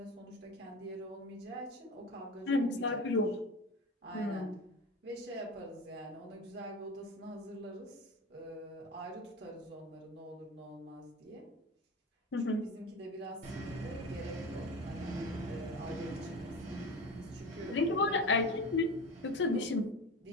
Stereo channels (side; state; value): both; normal; correlation 0.29